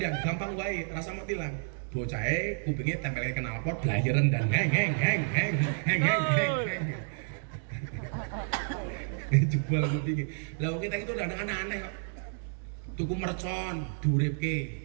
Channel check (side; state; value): left; silent; 57 dB below the other